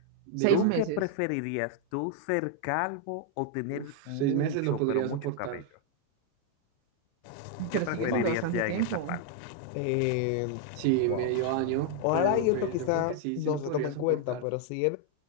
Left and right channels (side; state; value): both; different; correlation 0.00